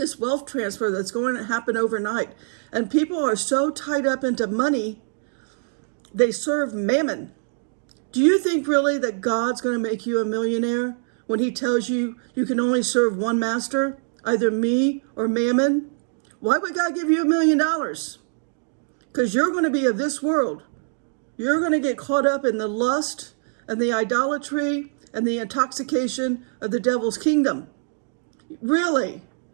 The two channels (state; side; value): silent; left; digital silence